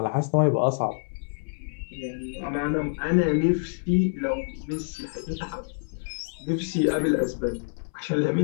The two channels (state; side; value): silent; right; 60 dB below the other